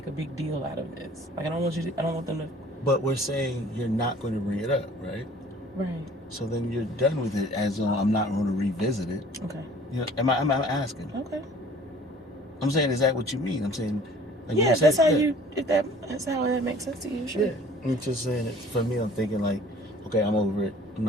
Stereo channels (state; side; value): normal; both; correlation 0.51